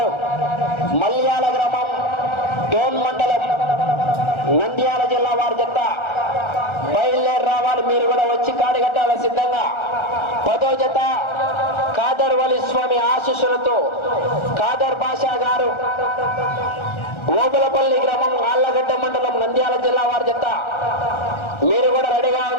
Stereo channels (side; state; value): right; late; 1.3 ms